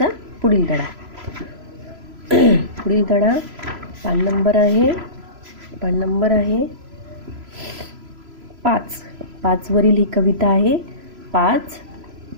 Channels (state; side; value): late; left; 3.0 ms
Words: पुढील धडा. पुढील धडा पान नंबर आहे 5 वरील ही कविता आहे. 5